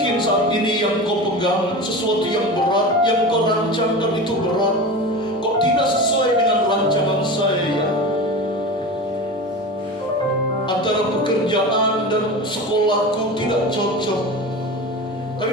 saat ini yang kau pegang sesuatu yang berat, yang kau rancangkan itu berat, kok tidak sesuai dengan rancangan saya. Antara pekerjaan dan sekolahku tidak cocok.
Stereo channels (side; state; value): both; normal; correlation 0.29